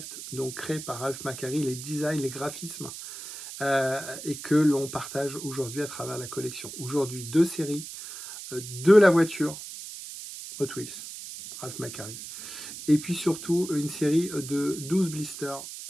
donc créés par Ralph McQuarrie, les designs, les graphismes, et que l'on partage aujourd'hui à travers la collection. Aujourd'hui, deux séries de la voiture Hot Wheels, Ralph McQuarrie, et puis surtout une série de 12 blisters.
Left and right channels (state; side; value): noise; right; hiss, 11 dB below the sound